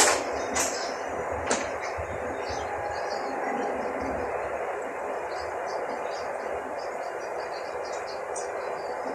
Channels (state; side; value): identical; both; correlation 1.00